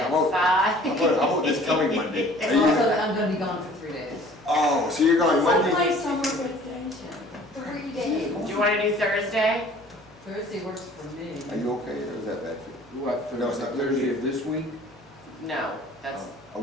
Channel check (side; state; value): both; normal; correlation 0.51